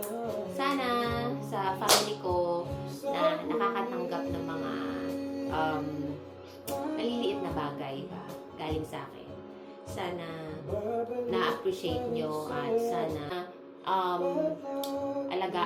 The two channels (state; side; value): identical; both; correlation 1.00